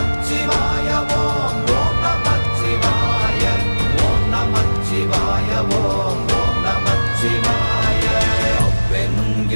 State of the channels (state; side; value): inverted; both; correlation -1.00